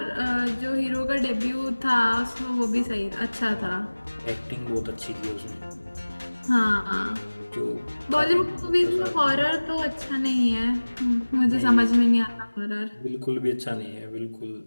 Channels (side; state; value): both; inverted; correlation -1.00